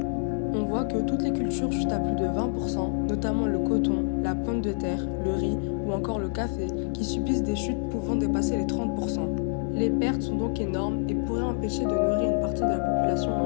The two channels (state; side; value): silent; right; 60 dB below the other